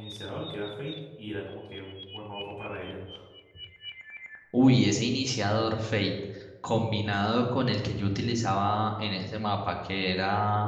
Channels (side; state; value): both; identical; correlation 1.00